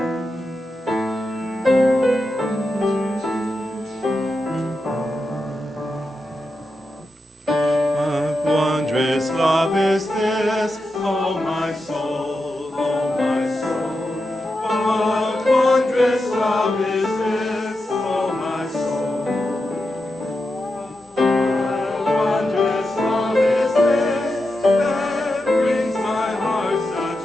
Love is this, oh my soul, oh my soul. What wondrous love is this, oh my soul. What wondrous love is this that brings my heart such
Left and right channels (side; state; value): both; normal; correlation 0.88